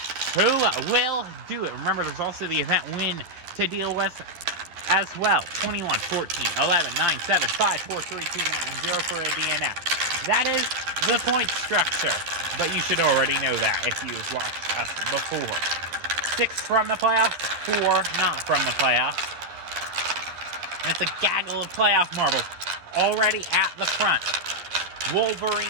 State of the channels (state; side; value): late; left; 11 ms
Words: Who will do it? Remember, there's also the event win to deal with as well. 21, 14, 11, 9, 7, 5, 4, 3, 2, 1, 0 for a DNF. That is the point structure, but you should already know that if you've watched us before. 6 from the playoffs, 4 not from the playoffs. And it's a gaggle of playoff marbles already at the front.